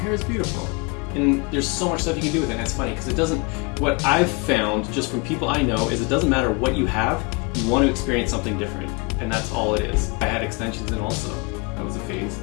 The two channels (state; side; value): quieter; right; 29.1 dB